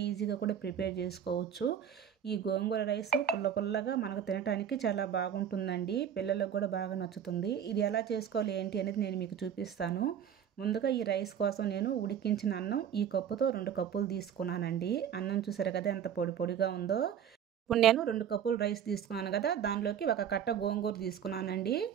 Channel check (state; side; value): quieter; left; 8.9 dB